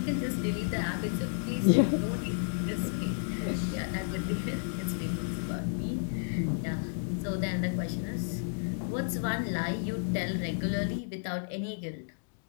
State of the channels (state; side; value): silent; right; digital silence